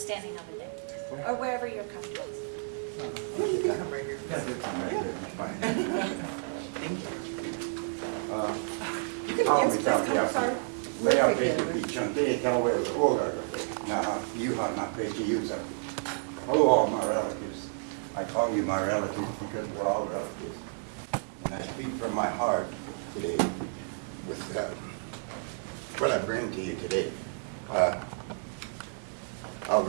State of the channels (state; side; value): silent; left; digital silence